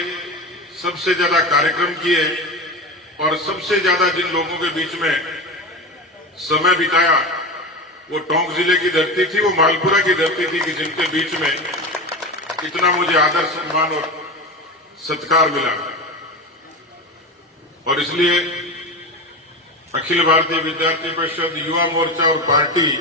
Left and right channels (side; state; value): both; normal; correlation 0.23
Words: सबसे ज्यादा कार्यक्रम किए और सबसे ज्यादा जिन लोगों के बीच में समय बिताया वो टोंक जिले की धरती थी, वो मालपुरा की धरती थी कि जिनके बीच में इतना मुझे आदर सम्मान और सत्कार मिला। और इसलिए अखिल भारतीय विद्यार्थी परिषद, युवा मोर्चा और पार्टी